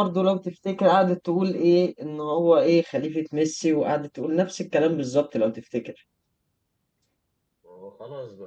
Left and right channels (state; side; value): identical; both; correlation 1.00